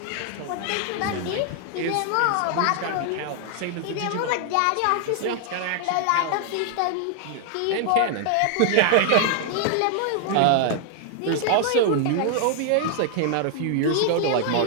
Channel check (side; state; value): both; different; correlation 0.00